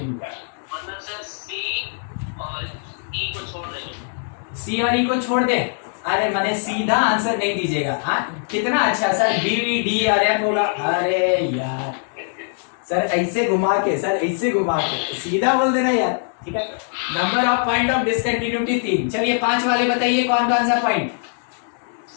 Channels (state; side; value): silent; right; digital silence